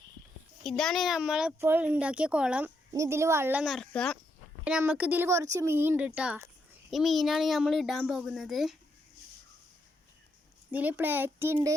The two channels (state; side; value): normal; both; correlation 0.79